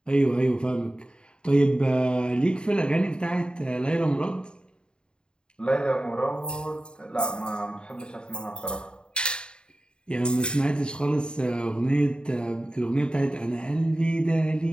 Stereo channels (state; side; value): late; right; 0.050 ms